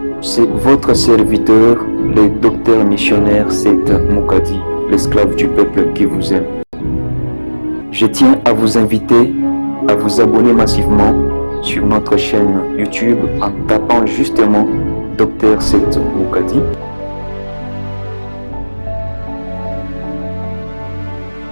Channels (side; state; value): both; inverted; correlation -1.00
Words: C'est votre serviteur, le docteur missionnaire Seth Mukadi, l'esclave du peuple qui vous aime. Je tiens à vous inviter à vous abonner massivement sur notre chaîne YouTube en tapant justement Dr Seth Mukadi.